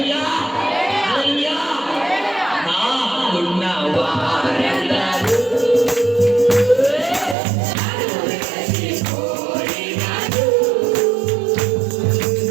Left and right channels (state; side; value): drops out; left; at 7.4 s